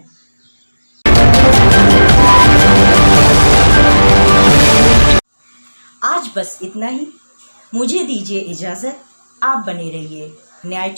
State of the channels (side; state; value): both; inverted; correlation -1.00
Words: आज बस इतना ही। मुझे दीजिए इजाजत। आप बने रहिए न्याय